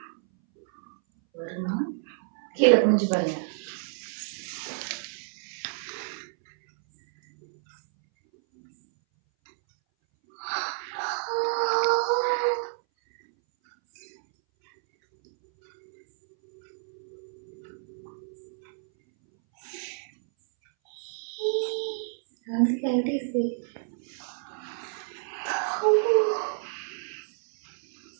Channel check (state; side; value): silent; left; 59 dB below the other